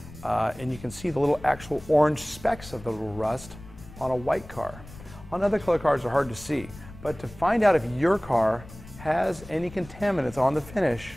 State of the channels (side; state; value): left; noise; rumble, 18 dB below the sound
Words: and you can see the little actual orange specks of the little rust on a white car. On other color cars, they're hard to see, but to find out if your car has any contaminants on the finish,